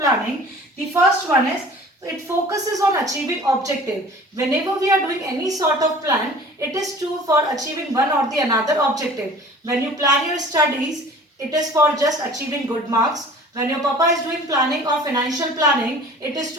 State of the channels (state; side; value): normal; both; correlation 0.45